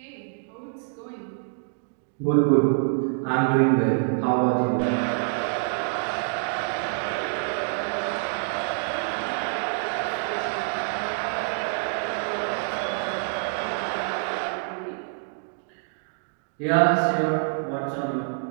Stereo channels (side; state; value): left; silent; 61 dB below the other